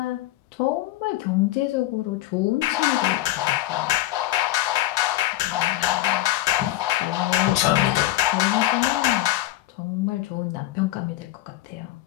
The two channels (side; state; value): right; quieter; 15.5 dB